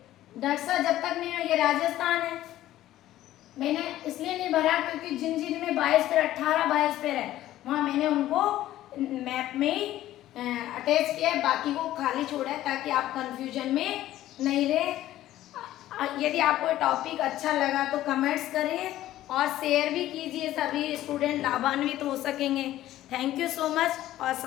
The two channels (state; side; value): quieter; right; 14.1 dB